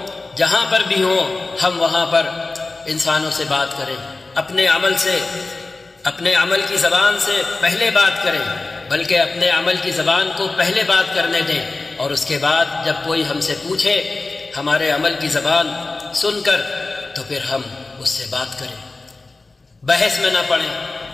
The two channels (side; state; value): right; quieter; 3.5 dB